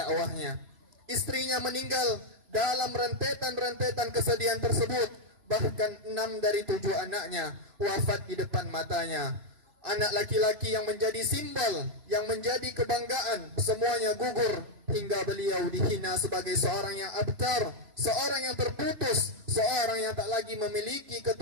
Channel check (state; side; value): late; left; 3.0 ms